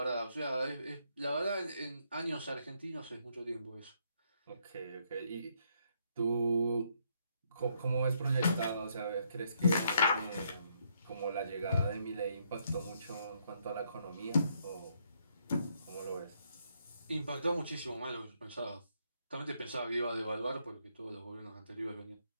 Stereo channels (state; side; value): inverted; both; correlation -0.73